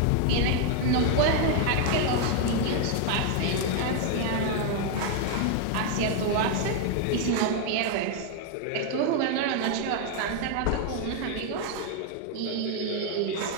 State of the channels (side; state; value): both; different; correlation 0.00